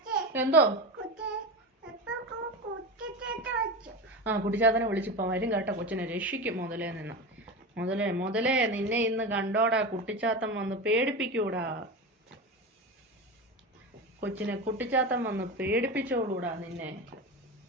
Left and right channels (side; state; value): both; normal; correlation 0.23